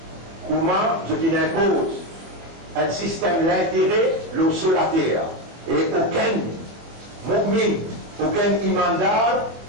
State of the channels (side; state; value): left; late; 24 ms